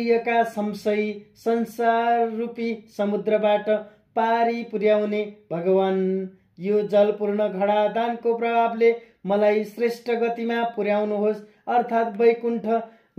संशयी संसार रूपी समुद्रबाट पारी पुर्याउने भगवान, यो जलपूर्ण घडा दानको प्रभावले मलाई श्रेष्ठ गतिमा पुर्याउनुहोस् अर्थात् वैकुण्ठ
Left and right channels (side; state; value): both; identical; correlation 1.00